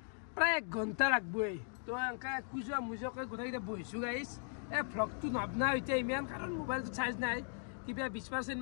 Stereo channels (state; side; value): silent; right; 52 dB below the other